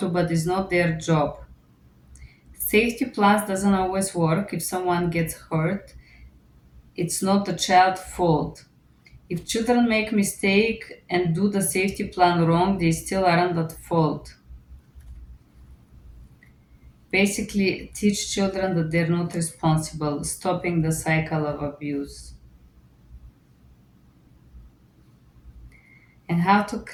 to, but it's not their job. Safety plans doesn't always work. If someone gets hurt, it's not the child's fault. If children make mistake and do the safety plan wrong, they still aren't at fault. Basically, teach children that they're not responsible, stopping the cycle of abuse. And how to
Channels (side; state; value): both; identical; correlation 1.00